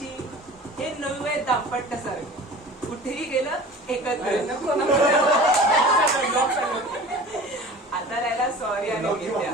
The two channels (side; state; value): both; normal; correlation 0.41